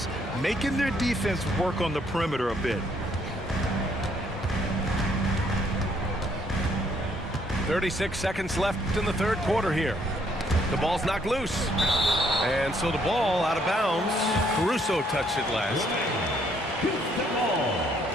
making their defense work on the perimeter a bit. 36 seconds left in the third quarter here. The ball's knocked loose. And so the ball out of bounds. Caruso touched it last. Houston ball.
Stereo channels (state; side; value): normal; both; correlation 0.68